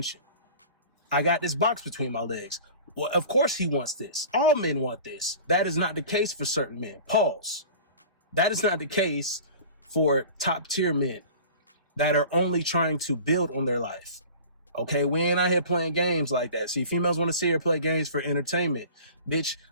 I got this box between my legs. Well, of course he wants this. All men want this. That is not the case for certain men. Pause. That is not the case for top tier men that are only trying to build on their life. Okay, we ain't out here playing games like that. See, females want to see her play games for entertainment. Bitch,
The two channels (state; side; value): inverted; both; correlation -0.41